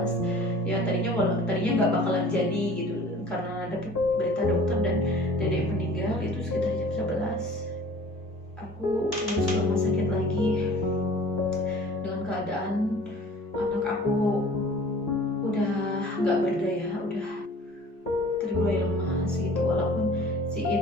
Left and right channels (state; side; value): normal; both; correlation 0.46